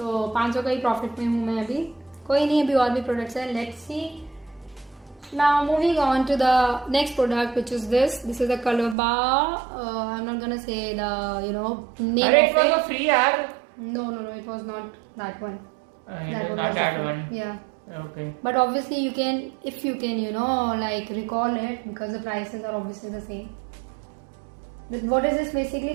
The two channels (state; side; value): drops out; left; at 9.0 s